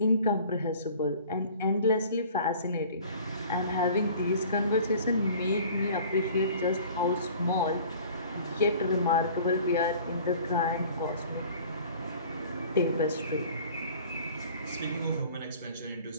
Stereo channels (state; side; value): inverted; both; correlation -0.47